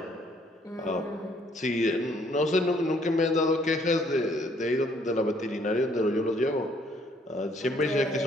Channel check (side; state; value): both; normal; correlation 0.64